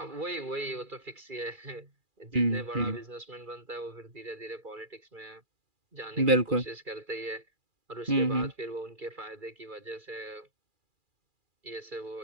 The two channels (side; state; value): left; late; 2.4 ms